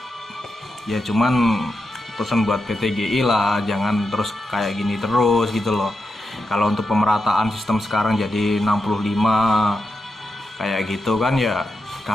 Ya cuman pesan buat PTGI lah, jangan terus kayak gini terus gitu loh. Kalau untuk pemerataan sistem sekarang jadi 65 kayak gitu kan ya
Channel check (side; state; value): both; normal; correlation 0.87